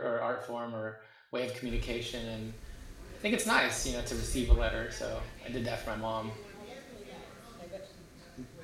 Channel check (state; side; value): identical; both; correlation 1.00